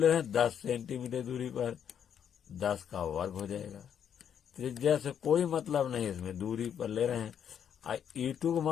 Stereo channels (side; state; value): right; quieter; 8.6 dB